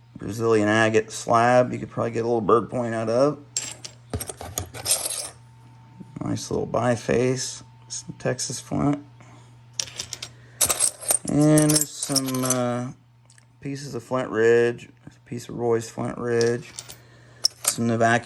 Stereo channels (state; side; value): identical; both; correlation 1.00